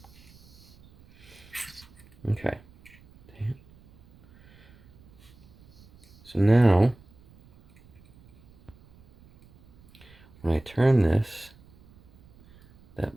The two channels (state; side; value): noise; right; rumble, 26 dB below the sound